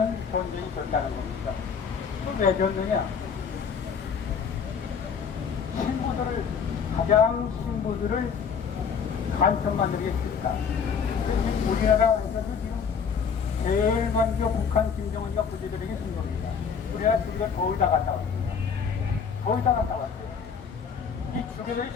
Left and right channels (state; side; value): quieter; right; 6.5 dB